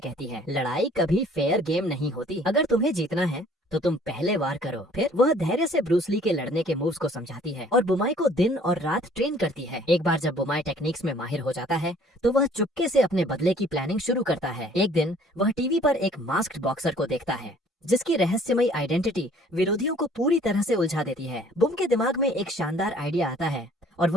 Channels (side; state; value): both; normal; correlation 0.56